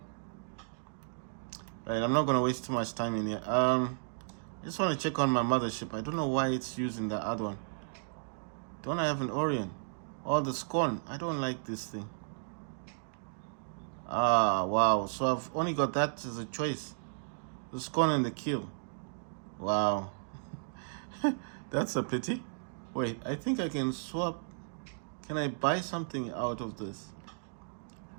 Right, I'm not gonna waste too much time in here. I just want to check on my mothership. I don't know why it's using the other one. Don't I have an Orion? Oh, the Scorn. I don't like this thing. Ah, wow. So I've only got that as a choice. The Scorn and the Kill. Wow. That's a pity. Wait, I think I can swap. Can I buy something out of this?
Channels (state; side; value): silent; left; digital silence